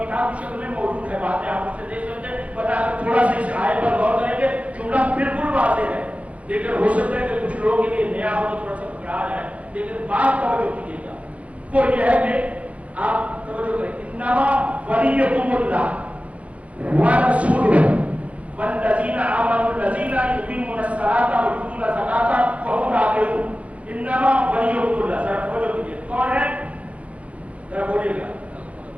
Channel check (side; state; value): left; late; 0.065 ms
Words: کتاب کی شکل میں موجود ہے، باتیں آپ اسے دیکھ سکتے ہیں. بتا کر تھوڑا سا اس آیت پر غور کریں گے. جملہ بالکل واضح ہے لیکن ہو سکتا ہے کہ کچھ لوگوں کے لیے نیا ہو تو تھوڑا سا گھبرا جائے، لیکن بات توجہ کیجیے گا. وہ یہ ہے کہ آپ توجہ کریں. انما ولیکم اللہ ورسولہ والذین آمنوا الذین یقیمون الصلاۃ ویؤتون الزکاۃ وهم راکعون. انما ولیکم اللہ. ذرا توجہ کیجیے، کون ہے؟ ذرا بولیے گا.